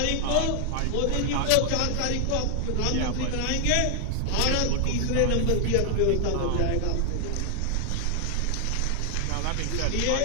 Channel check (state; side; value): different; both; correlation 0.00